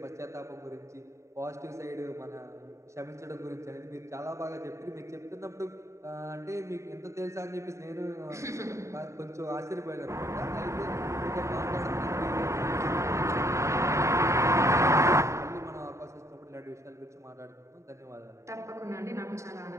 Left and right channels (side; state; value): left; late; 0.14 ms